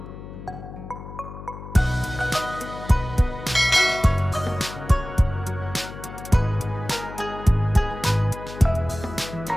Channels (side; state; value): left; noise; hum, 12 dB below the sound